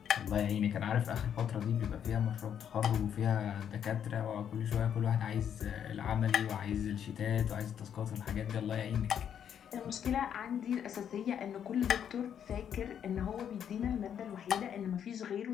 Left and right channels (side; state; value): right; quieter; 8.8 dB